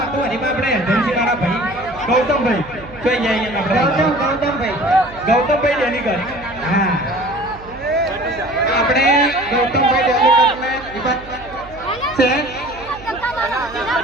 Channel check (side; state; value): right; noise; hum, 19 dB below the sound